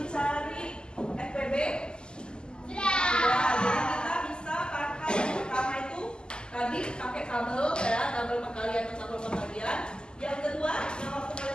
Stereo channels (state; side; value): late; right; 0.047 ms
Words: FPB? Sudah. Jadi kita bisa pakai yang pertama itu tadi pakai kabel ya, kabel perkalian atau kabel pembagian. Yang kedua, yang waktu kalian